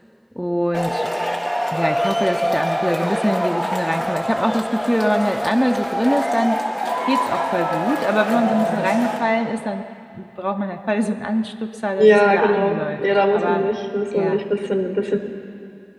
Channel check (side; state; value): both; identical; correlation 1.00